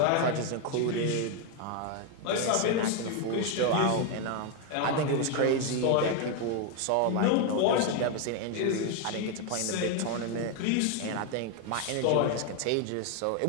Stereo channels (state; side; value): different; both; correlation 0.01